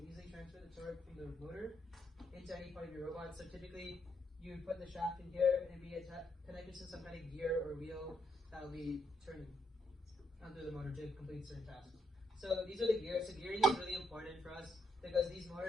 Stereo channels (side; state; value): both; normal; correlation 0.77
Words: easily transfer the torque from the motor into any part of your robot. So typically, you would put the shaft in here and be connected to some kind of gear or wheel that will be turning through the motor to complete certain tasks. So these are the gears. So gearing is really important for us because these